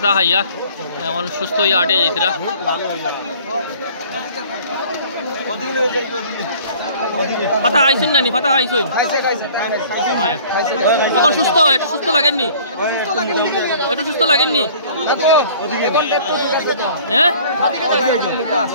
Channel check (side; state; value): both; inverted; correlation -0.51